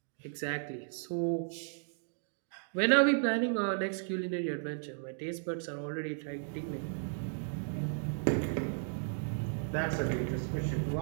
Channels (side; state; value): left; silent; digital silence